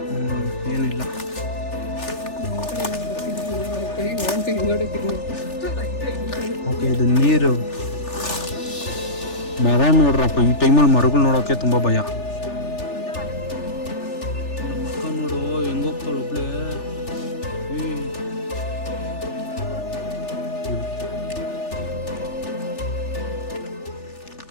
ಏನಿಲ್ಲ. ಓಕೆ, ಇದು ನೀರು. ಮರ ನೋಡ್ರಪ್ಪ, ಈ ಟೈಮಲ್ಲಿ ಮರಗಳು ನೋಡೋಕೆ ತುಂಬ ಭಯ. ಮಕ್ಕ ನೋಡು ಹೆಂಗೋಗ್ತಾಳು ಒಬ್ಳೆ.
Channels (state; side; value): late; right; 3.4 ms